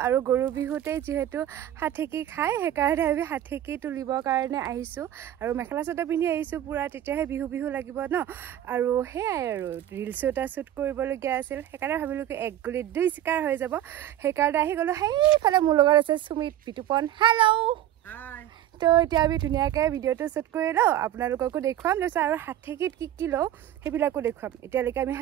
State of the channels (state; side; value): quieter; left; 12.0 dB